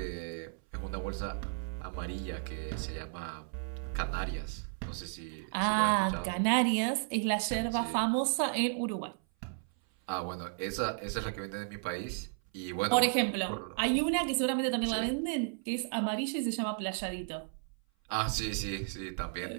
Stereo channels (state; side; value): silent; left; 55 dB below the other